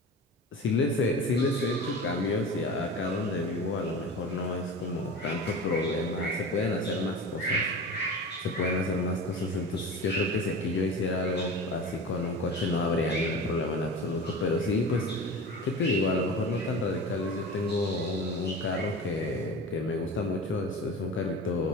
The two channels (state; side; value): normal; both; correlation 0.32